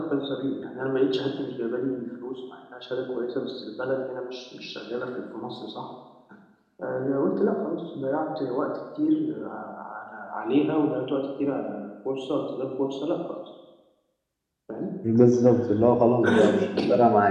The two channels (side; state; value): both; identical; correlation 1.00